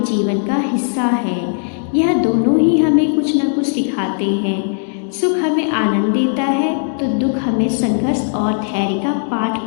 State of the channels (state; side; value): silent; right; digital silence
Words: जीवन का हिस्सा है। यह दोनों ही हमें कुछ न कुछ सिखाते हैं। सुख हमें आनंद देता है तो दुख हमें संघर्ष और धैर्य का पाठ